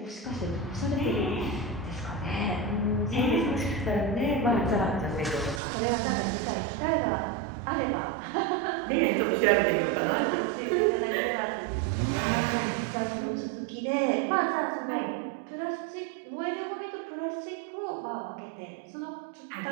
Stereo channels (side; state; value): left; drops out; at 5.6 s